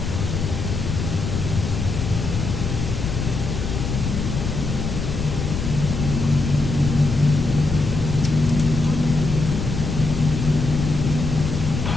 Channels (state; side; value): noise; left; rumble, 3 dB below the sound